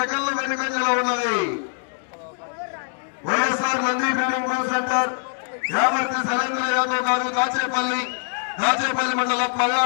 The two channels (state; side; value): silent; right; 63 dB below the other